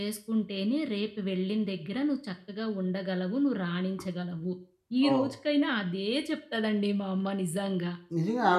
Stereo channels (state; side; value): identical; both; correlation 1.00